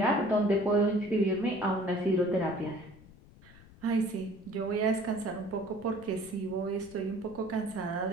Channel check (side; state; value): left; noise; rumble, 22 dB below the sound